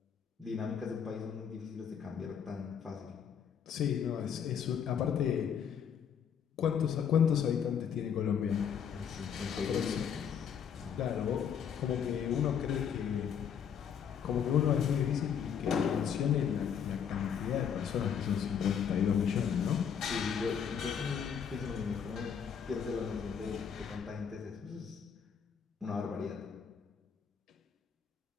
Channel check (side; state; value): right; quieter; 7.7 dB